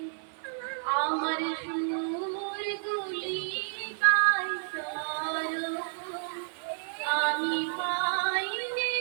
আমার সুরগুলি পাই করো, আমি পাই যে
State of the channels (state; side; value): silent; left; digital silence